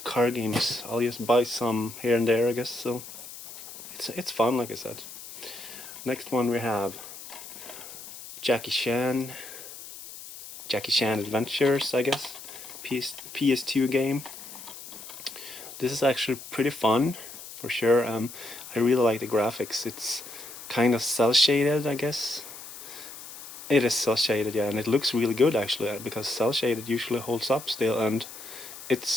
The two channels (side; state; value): left; noise; hiss, 13 dB below the sound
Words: car games. I'll just buy some here and there, I guess, so it's fun, like I said. Next one we have Jackie Chan, Jackie Chan Adventures, I guess, PS2 game. This is actually pretty fun, for sure. I really like the graphics. It's kind of cel shaded, I guess. It is cel shaded, yeah, and it looks really good actually, because cel shaded usually holds up still, and